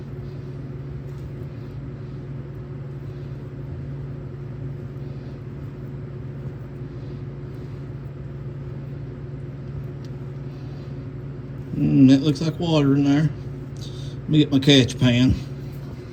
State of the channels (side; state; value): both; identical; correlation 1.00